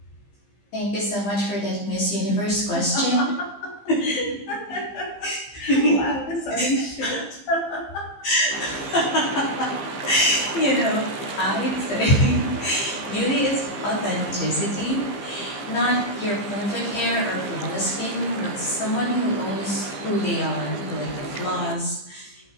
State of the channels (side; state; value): right; late; 15 ms